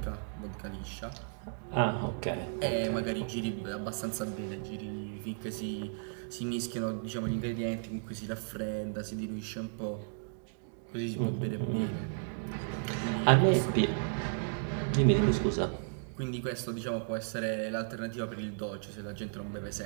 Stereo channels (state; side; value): silent; left; digital silence